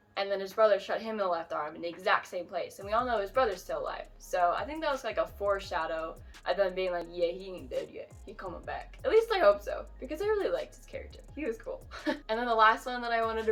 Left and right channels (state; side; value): identical; both; correlation 1.00